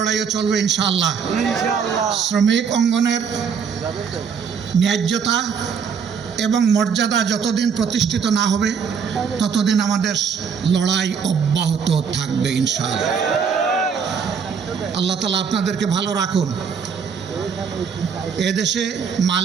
চলবে ইনশাআল্লাহ। শ্রমিক অঙ্গনের ন্যায্যতা এবং মর্যাদা যতদিন প্রতিষ্ঠিত না হবে ততদিন আমাদের লড়াই অব্যাহত থাকবে ইনশাআল্লাহ। আল্লাহ তাআলা আপনাদেরকে ভালো রাখুন। এদেশে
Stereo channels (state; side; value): quieter; left; 6.5 dB